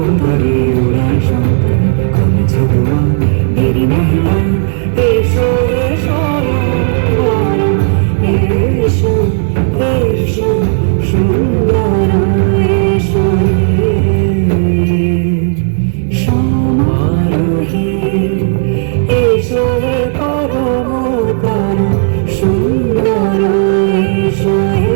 উড়ায় শঙ্কর, কমেছে ধোঁয়া দেরি নাহি আর। এসো এসো এসো এসো সুন্দর এসো হে। সমারোহে এসো হে পরমতর সুন্দর এসো হে।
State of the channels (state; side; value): silent; left; digital silence